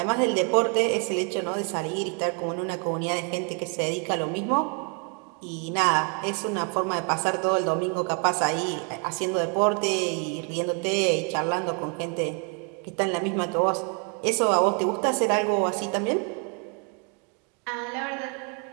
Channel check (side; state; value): left; quieter; 37.6 dB